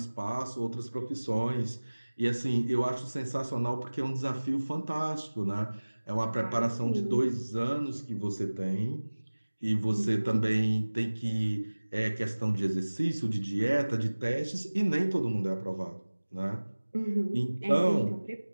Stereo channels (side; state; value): both; inverted; correlation -1.00